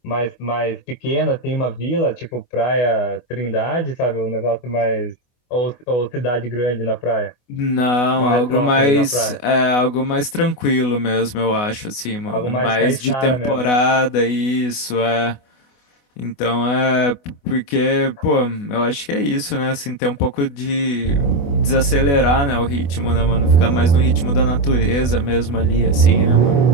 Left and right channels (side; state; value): right; late; 24 ms